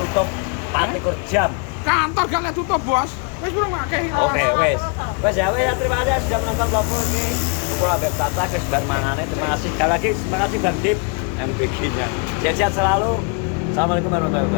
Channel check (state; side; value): quieter; right; 33.6 dB